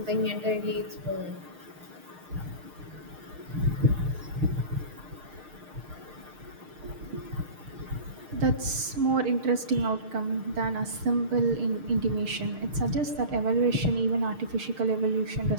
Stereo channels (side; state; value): left; late; 6.5 ms